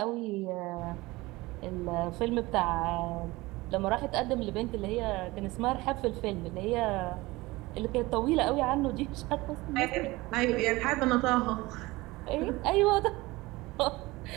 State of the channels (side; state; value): left; quieter; 20.9 dB